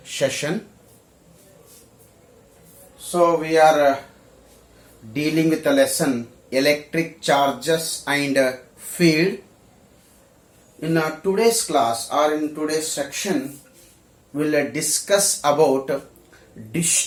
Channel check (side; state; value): both; identical; correlation 1.00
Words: session. So, we are dealing with the lesson electric charges and field. In today's class or in today's section, we'll discuss about